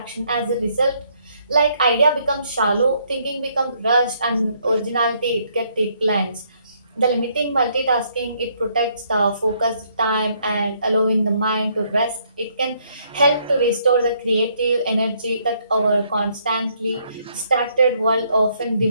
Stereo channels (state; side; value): inverted; both; correlation -0.69